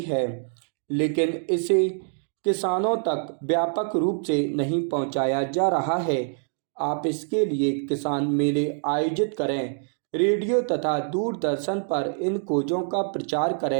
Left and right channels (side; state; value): left; silent; digital silence